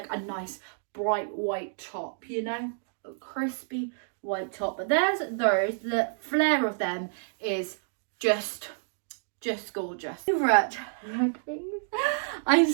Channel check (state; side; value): silent; left; digital silence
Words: a nice bright white top, you know, a crispy white top. But there's those, the flare of them is just gorgeous. Right, I'm